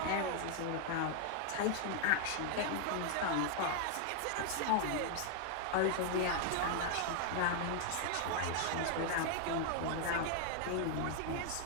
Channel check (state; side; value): different; both; correlation 0.00